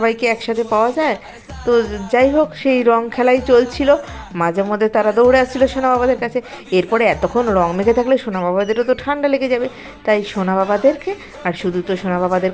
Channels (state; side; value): identical; both; correlation 1.00